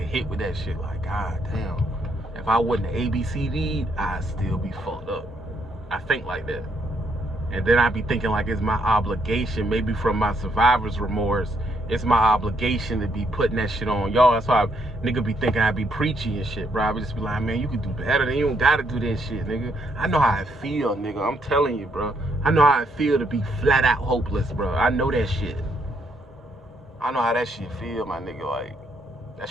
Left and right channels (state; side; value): normal; both; correlation 0.72